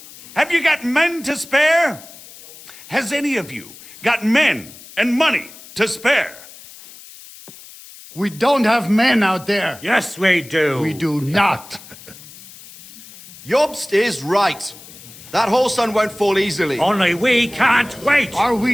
Have you got men to spare? Has any of you got men and money to spare? We don't have men out there. Yes, we do. We do not. Jobst is right. That whole sun won't fall easily. Only we can't wait. Are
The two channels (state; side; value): noise; left; hiss, 19 dB below the sound